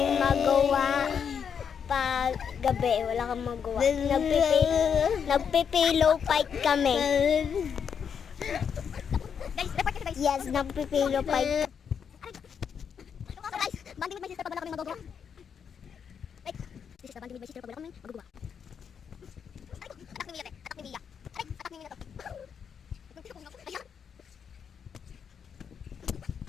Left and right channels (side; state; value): right; quieter; 7.2 dB